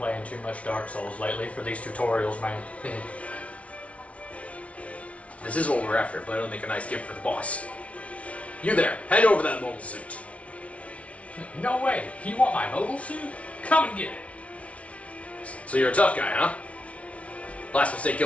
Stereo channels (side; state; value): right; late; 0.064 ms